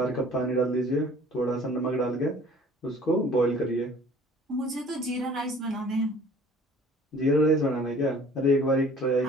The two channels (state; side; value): normal; both; correlation 0.50